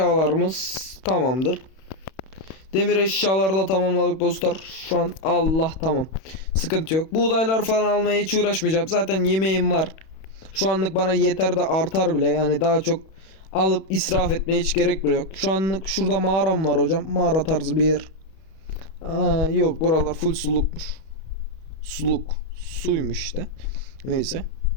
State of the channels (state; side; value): late; right; 31 ms